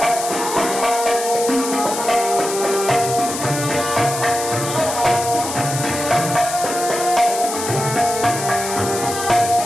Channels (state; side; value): noise; left; hiss, 6 dB below the sound